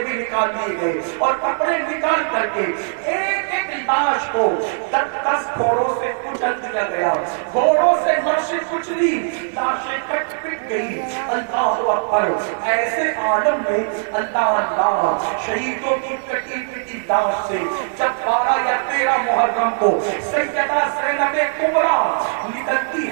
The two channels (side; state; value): left; silent; digital silence